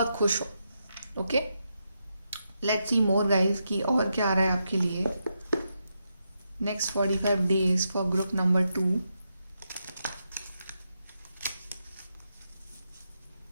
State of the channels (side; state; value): both; inverted; correlation -0.84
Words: खुश हो। Okay, let's see more guys कि और क्या आ रहा है आपके लिए next 45 days for group number 2।